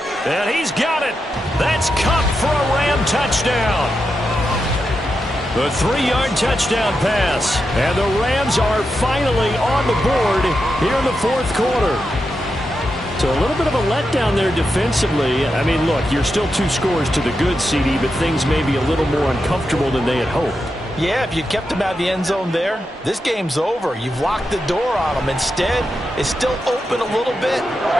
And he's got it. That's Kupp for a Ram touchdown. The 3-yard touchdown pass. And the Rams are finally on the board here in the 4th quarter. So a little bit of a letdown there defensively. I mean, look, you're still 2 scores to the good, CD, but things may be a little more uncomfortable than they had hoped. Yeah, if you kept them out of the end zone there, this game's over. You've locked the door on them. Instead, it's still open a little bit,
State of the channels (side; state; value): both; normal; correlation 0.87